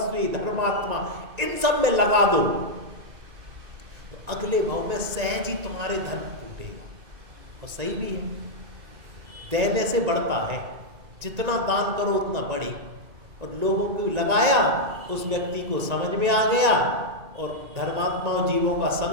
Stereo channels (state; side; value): late; left; 1.9 ms